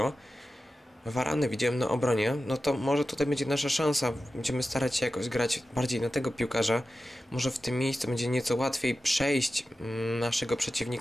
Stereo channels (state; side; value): normal; both; correlation 0.93